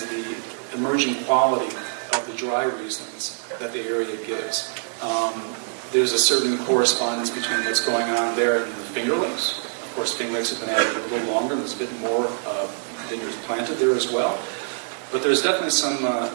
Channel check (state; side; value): silent; left; digital silence